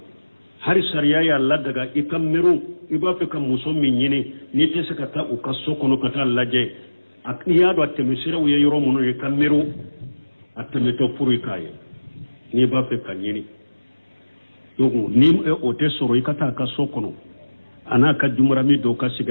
hari sariya y'a ladaga i ka miiri i b'a fɛ ka muso min ɲini n'i tɛ se ka taa u ka so kɔnɔ ka taa lajɛ n'i y'a dɔn a tɛmɛsiraw ye yɔrɔ minnu ye ka miiri a tɛmɛtɔ furu i k'a ye n'i b'a fɛ ka ɲini donc ni o tɛ sɔrɔ i ka taa a ka so kɔnɔ a n'a ka jumarami dɔw ka sigi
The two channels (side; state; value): both; inverted; correlation -1.00